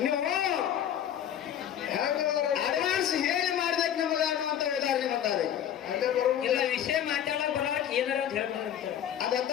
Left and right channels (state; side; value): quieter; right; 10.1 dB